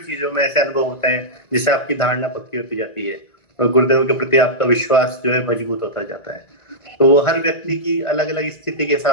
चीजों में ऐसे अनुभव होते हैं जिससे आपकी धारणा पक्की होती जाती है, और गुरुदेव के प्रति आपका विश्वास जो है मजबूत होता जाता है। तो वो हर व्यक्ति की अलग अलग स्थिति के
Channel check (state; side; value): late; right; 1.9 ms